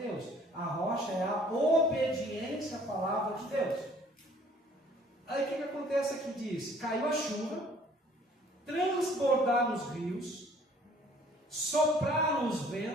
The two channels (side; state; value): both; normal; correlation 0.56